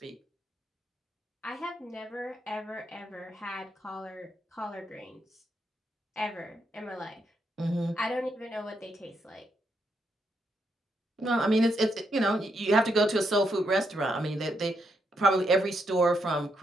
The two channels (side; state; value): both; normal; correlation 0.79